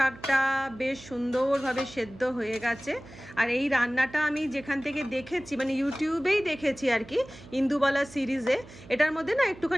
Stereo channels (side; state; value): right; noise; hum, 19 dB below the sound